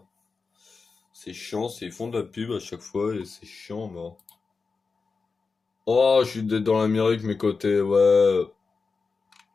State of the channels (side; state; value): right; quieter; 4.6 dB